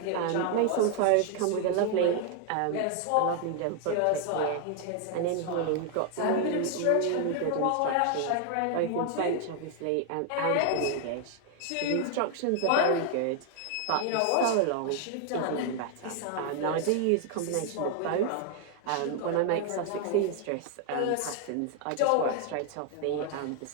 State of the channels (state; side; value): different; both; correlation 0.00